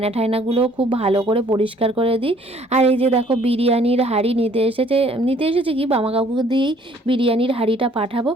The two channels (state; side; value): normal; both; correlation 0.59